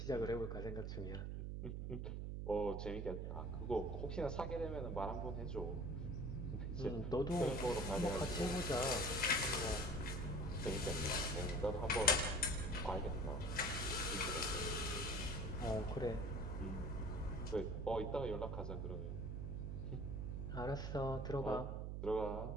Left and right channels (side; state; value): right; noise; hum, 3 dB below the sound